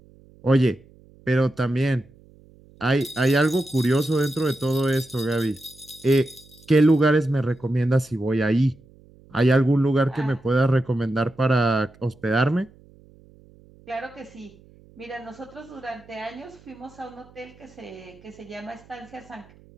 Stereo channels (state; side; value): noise; right; hum, 26 dB below the sound